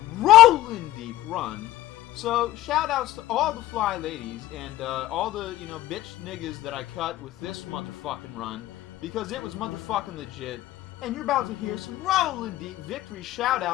Rollin' Deep run. So, shout outs to all the fly ladies and all the, bitch niggas that I cut with this motherfucking run, because it was motherfucking legit. And you're about to hear some Rollin' Deep victory shout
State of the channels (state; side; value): quieter; right; 15.1 dB